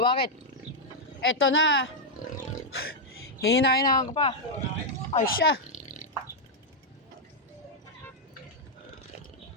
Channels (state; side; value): normal; both; correlation -0.02